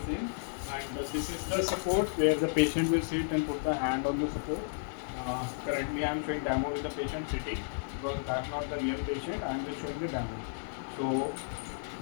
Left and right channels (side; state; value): right; silent; 56 dB below the other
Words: same, and this is the support where the patient will sit and put the hand on the support. Currently I am showing demo with the patient sitting because that's not the real patient. I am just showing the demo. So